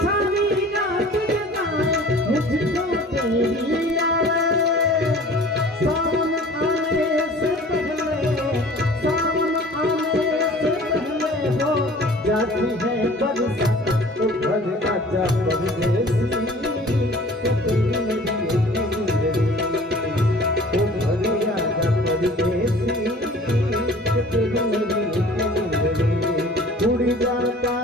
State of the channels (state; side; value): normal; both; correlation 0.47